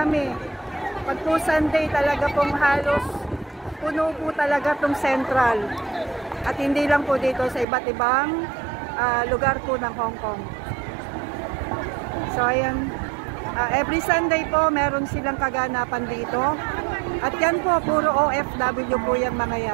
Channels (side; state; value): left; drops out; at 7.7 s